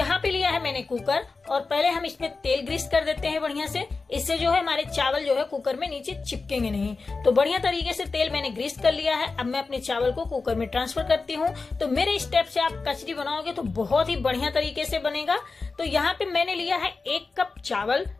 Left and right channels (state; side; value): quieter; right; 4.1 dB